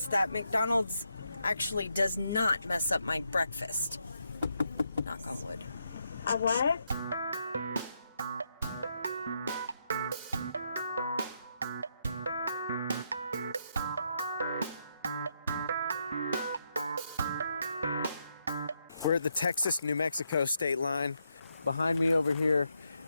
that McDonald's actually does not mess up my breakfast. Knock on wood. A what? We're at the Texas-New Mexico state line. Behind me over here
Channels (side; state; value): both; inverted; correlation -0.80